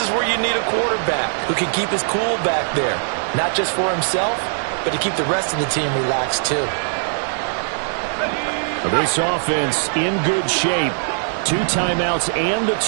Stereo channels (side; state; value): left; silent; digital silence